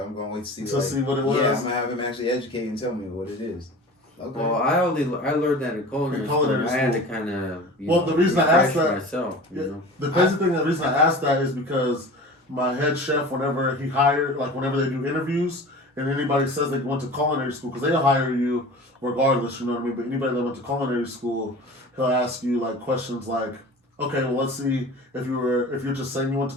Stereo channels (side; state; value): both; normal; correlation 0.37